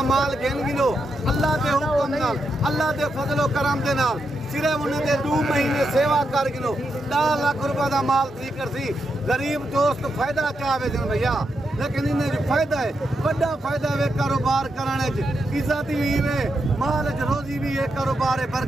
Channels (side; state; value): both; normal; correlation 0.84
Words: माल घेन गिनो अल्लाह दे हुक्म नाल, अल्लाह दे फजलो करम दे नाल सिर्फ उन्हें दे 2 महीने सेवा कर गिनो 10 लाख रुपए दा माल थी कर सी। गरीब दोस्त फायदा चाहे दिन भैया, लेकिन इन्हें जो फायदा है बड़ा फायदा है कारोबार कराने च, इज्जत भी है, माल च रोजी भी है, कारोबार है,